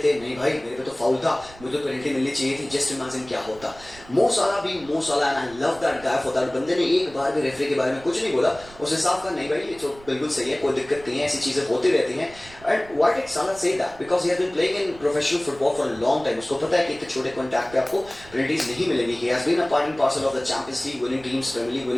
नहीं भाई मेरे पे तो फाउल था, मुझे तो पेनल्टी मिलनी चाहिए थी, जस्ट इमेजिन क्या होता. मो सलाह भी मो सलाह, and I love that guy for that. बंदे ने एक बार भी रेफरी के बारे में कुछ नहीं बोला, उसने साफ कहा नहीं भाई ये तो बिल्कुल सही है, कोई दिक्कत नहीं है, ऐसी चीजें होती रहती हैं. And why did Salah say that? Because he has been playing in professional football for a long time. उसको पता है कि इतने छोटे कॉन्टैक्ट पे आपको पेनल्टीज नहीं मिलेंगी. He has been a part and parcel of the Champions League winning teams, Premier League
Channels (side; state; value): right; noise; rumble, 21 dB below the sound